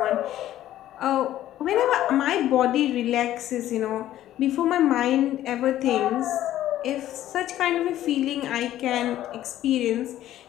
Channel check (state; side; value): quieter; right; 13.1 dB